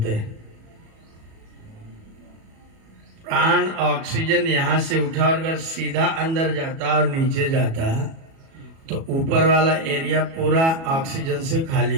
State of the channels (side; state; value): left; late; 37 ms